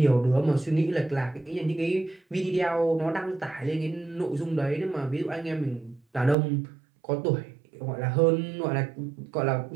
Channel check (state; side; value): drops out; left; at 6.4 s